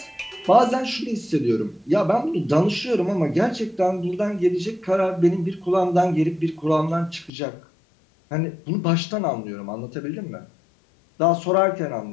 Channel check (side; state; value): right; drops out; at 7.3 s